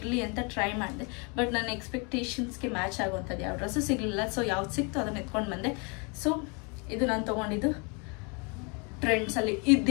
ಅಂತ ಟ್ರೈ ಮಾಡಿದೆ, ಬಟ್ ನನ್ನ ಎಕ್ಸ್ಪೆಕ್ಟೇಷನ್ಸ್ಗೆ ಮ್ಯಾಚ್ ಆಗುವಂಥದ್ದು ಯಾವ ಡ್ರೆಸ್ಸು ಸಿಗಲಿಲ್ಲ. ಸೊ ಯಾವ್ದು ಸಿಕ್ತು ಅದನ್ನು ಎತ್ಕೊಂಡು ಬಂದೆ. ಸೊ ಇದು ನಾನು ತೊಗೊಂಡಿದ್ದು ಟ್ರೆಂಡ್ಸಲ್ಲಿ.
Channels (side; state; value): right; quieter; 32.6 dB